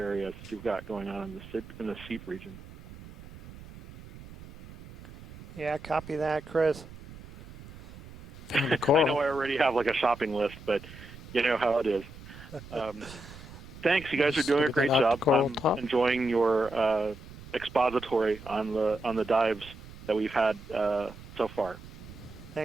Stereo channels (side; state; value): right; noise; rumble, 16 dB below the sound